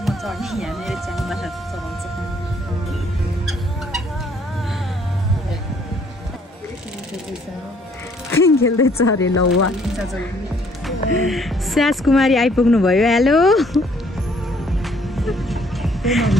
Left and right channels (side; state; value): both; normal; correlation 0.63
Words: म चढ्ने यहाँ मेरो च्याङ्बा चलाउँछ खेल्दैछ अरे ल वा स्यास कुमारी आइपुग्नु भयो हेलो